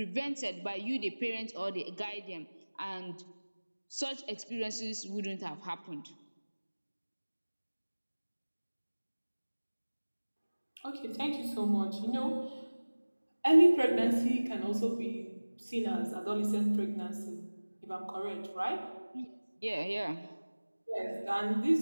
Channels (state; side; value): inverted; both; correlation -1.00